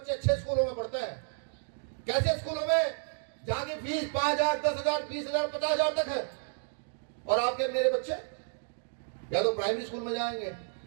अच्छे स्कूलों में पढ़ते हैं कैसे स्कूलों में जहाँ की फीस 5,000 10,000 20,000 50,000 तक है और आपके मेरे बच्चे या तो प्राइमरी स्कूल में जाएंगे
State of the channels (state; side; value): silent; left; digital silence